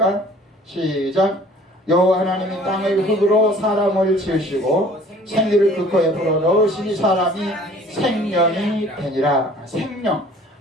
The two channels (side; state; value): both; normal; correlation 0.52